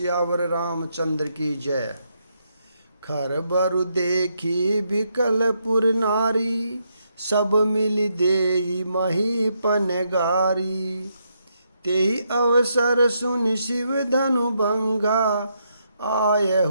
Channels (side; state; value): both; inverted; correlation -0.78